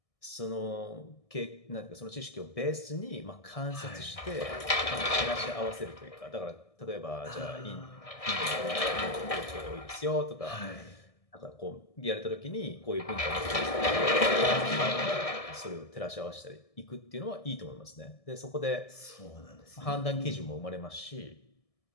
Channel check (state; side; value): late; right; 1.7 ms